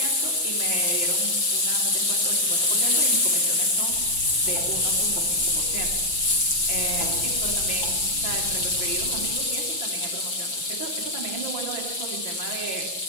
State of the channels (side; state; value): right; late; 5.8 ms